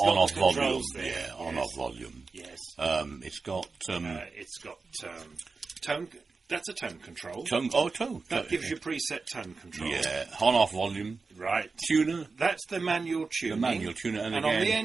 volume. On-off volume. Yes. It's got tone. That's a tone control. Tone. That gives you preset tone control. Yeah. On-off volume. Right. Tuner. That's the manual tuning. The manual tuner. And again, on the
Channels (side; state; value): left; quieter; 4.3 dB